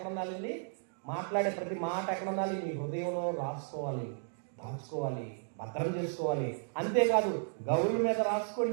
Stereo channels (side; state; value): left; silent; digital silence